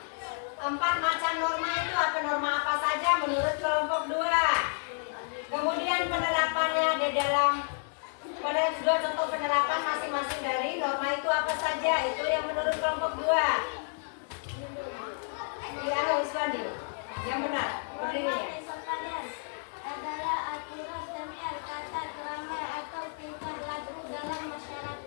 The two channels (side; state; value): right; silent; 57 dB below the other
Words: 4 macam norma itu apa? Norma apa saja menurut kelompok 2. Kemudian penerapannya di dalam pada 2 contoh penerapan masing-masing dari norma itu apa saja, itu yang menurut kelompok 2. Wiswandi, yang benar berdirinya. Kesopanan adalah aturan tentang tata krama atau tingkah laku dalam